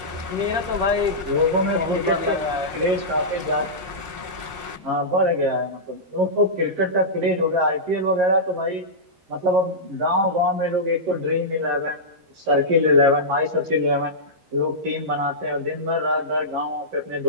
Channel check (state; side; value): late; left; 13 ms